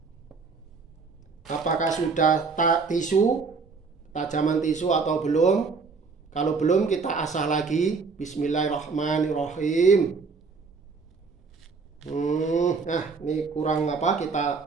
apakah sudah tisu, tajaman tisu atau belum. Kalau belum kita asah lagi. Bismillahirrahmanirrahim. Nah, ini kurang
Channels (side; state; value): left; quieter; 4.7 dB